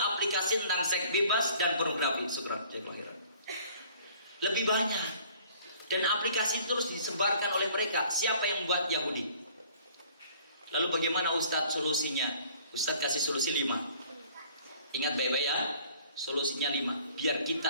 aplikasi tentang seks bebas dan pornografi. Syukran, cek lahiran. Lebih banyak. Dan aplikasi itu terus disebarkan oleh mereka. Siapa yang buat? Yahudi. Lalu bagaimana Ustadz solusinya? Ustadz kasih solusi 5. Ingat baik-baik ya. Solusinya 5, biar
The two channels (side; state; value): both; inverted; correlation -0.54